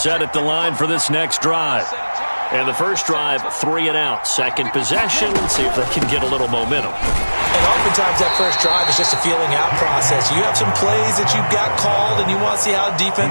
at the line for this next drive. And the first drive, 3 and out. Second possession, see if they can get a little momentum. And oftentimes that first drive is just a feeling out process. You have some plays that you've got called and you want to see how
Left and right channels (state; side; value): inverted; both; correlation -1.00